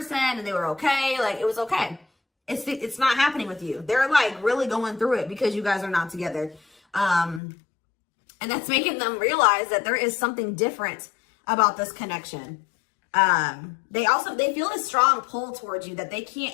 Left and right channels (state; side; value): drops out; right; at 7.4 s